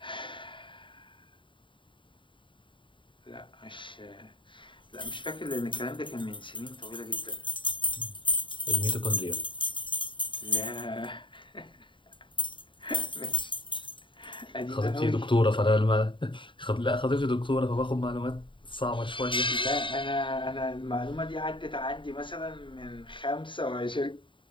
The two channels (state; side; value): late; right; 0.24 ms